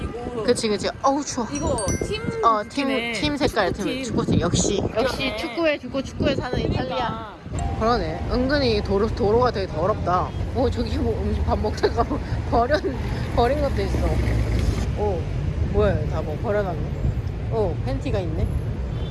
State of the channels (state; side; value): identical; both; correlation 1.00